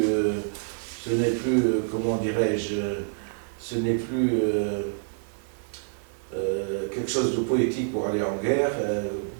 comment dirais-je, ce n'est plus quelque chose de poétique pour aller en guerre,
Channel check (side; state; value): left; silent; 60 dB below the other